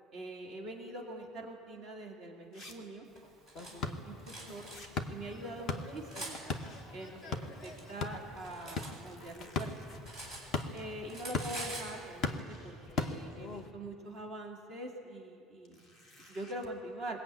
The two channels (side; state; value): both; normal; correlation 0.38